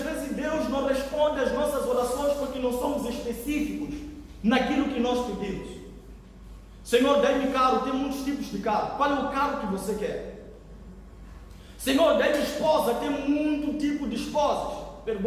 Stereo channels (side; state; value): both; identical; correlation 1.00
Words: Deus não responde às nossas orações porque não somos específicos naquilo que nós pedimos. Senhor, dá-me carro, tem muitos tipos de carro. Qual é o carro que você quer? Senhor, dá-me esposa, tem muito tipo de esposas.